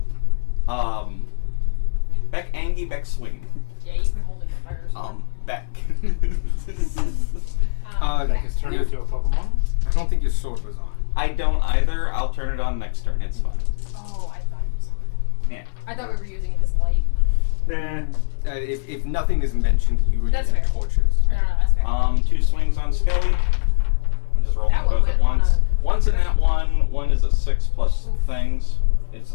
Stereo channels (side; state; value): right; silent; digital silence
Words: Beck Angie, Beck Swing. Yeah, you've been holding the fire. Beck. Beck is turned into a Pokemon? I don't think your sword was on. I don't either. I'll turn it on next turn. It's fine. Oh, I thought it was on. Yeah. I thought we were using it as light. Nah. If nothing is mentioned, you were That's using fair. torches. No, that's fair. 2 swings on Skelly. I'm just rolling That one both at went on once. a- One's a nat 1. One is a 6 plus things. It's